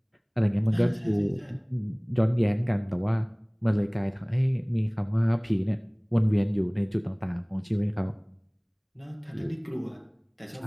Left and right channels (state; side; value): identical; both; correlation 1.00